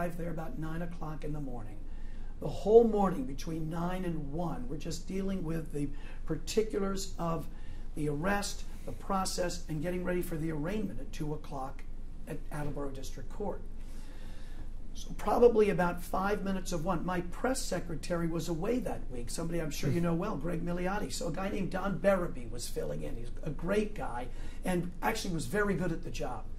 there about 9 o'clock in the morning. The whole morning between 9 and 1, we're just dealing with the particulars of the arrest, the process, and getting ready for the arraignment at 2 o'clock at Attleboro District Court. So probably about 5 minutes of one. My press secretary was away that week. Somebody I'm sure you know well, Greg Milioti. So a guy named Don Berraby was filling in. He's a great guy and actually was very good at the job.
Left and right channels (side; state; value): both; identical; correlation 1.00